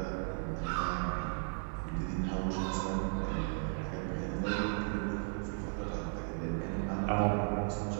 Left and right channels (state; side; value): silent; left; 54 dB below the other